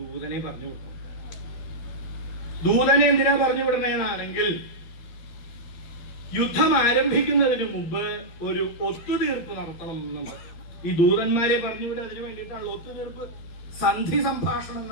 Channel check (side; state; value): right; late; 13 ms